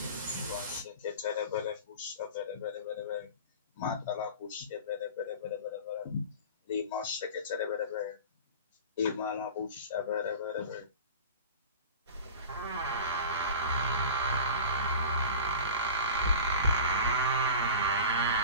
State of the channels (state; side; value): inverted; both; correlation -0.34